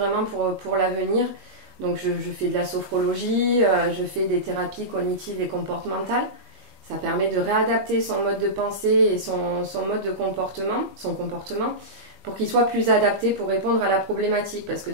pour l'avenir. Donc je fais de la sophrologie, je fais des thérapies cognitives et comportementales. Ça permet de réadapter son mode de pensée et son mode de comportement, pour qu'il soit plus adapté pour répondre à la problématique. Parce que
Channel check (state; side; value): late; left; 19 ms